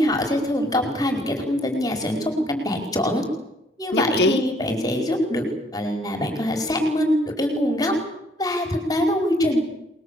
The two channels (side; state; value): both; normal; correlation 0.64